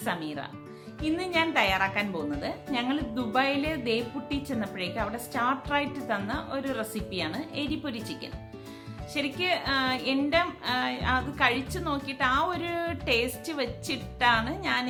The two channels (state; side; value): identical; both; correlation 1.00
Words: സമീറ. ഇന്ന് ഞാൻ തയ്യാറാക്കാൻ പോകുന്നത് ഞങ്ങൾ ദുബായിൽ ദേപ്പുട്ടി ചെന്നപ്പോഴേക്ക് അവിടെ സ്റ്റാർട്ടറായിട്ട് തന്ന ഒരു റെസിപ്പിയാണ് എരിപ്പൊരി ചിക്കൻ. ശരിക്ക് എൻ്റെ അത് കഴിച്ചു നോക്കിയിട്ട് ആ ഒരു ടേസ്റ്റ് വെച്ചിട്ടാണ് ഞാൻ